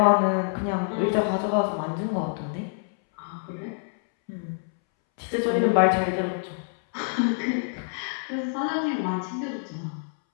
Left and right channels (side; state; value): right; silent; 61 dB below the other